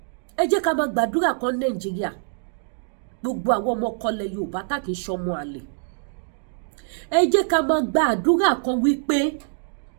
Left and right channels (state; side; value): silent; left; digital silence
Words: Ẹ jẹ́ ká máa gbàdúrà kan Nàìjíríà. Gbogbo àwọn ọmọ kọlẹ̀ Yorùbá tá kì í ṣọmọ àlè. Ẹ jẹ́ ká máa gbàdúrà kan wípé